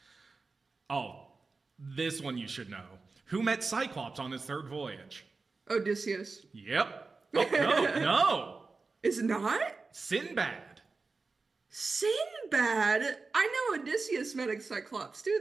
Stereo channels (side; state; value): left; quieter; 4.1 dB